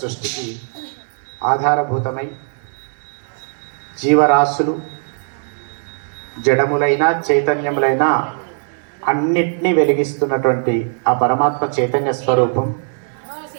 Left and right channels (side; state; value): left; silent; 67 dB below the other